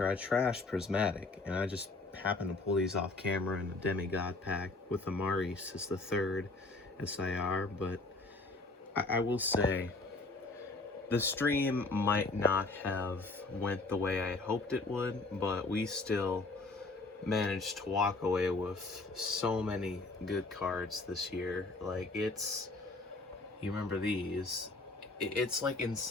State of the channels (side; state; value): right; quieter; 3.3 dB